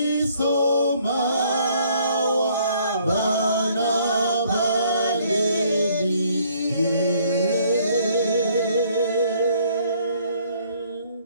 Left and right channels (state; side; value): inverted; both; correlation -0.63